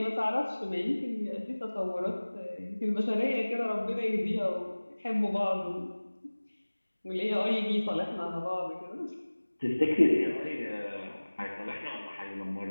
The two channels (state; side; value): inverted; both; correlation -1.00